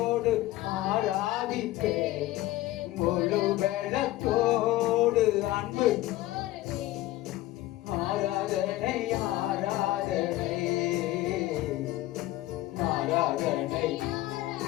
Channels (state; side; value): quieter; right; 16.4 dB